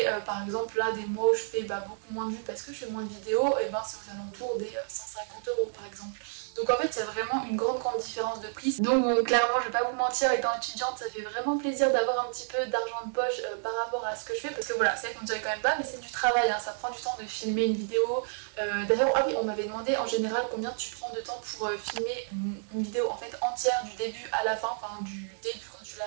par exemple là des mois où je fais beaucoup moins de vues parce que je fais moins de vidéos, et ben c'est aux alentours des 150 € par exemple. Donc en fait il y a vraiment une grande différence de prix. Donc bon, clairement je vais pas vous mentir, étant étudiante ça fait vraiment plaisir d'avoir un petit peu d'argent de poche par rapport à ce que je fais, parce que voilà, c'est vrai qu'on ne dirait quand même pas mais c'est du travail, hein, ça prend du temps de filmer une vidéo. D'ailleurs ah oui, on m'avait demandé en général combien tu prends de temps pour filmer une vidéo en fait entière du début à la fin, enfin du début quand tu la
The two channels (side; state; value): left; silent; 58 dB below the other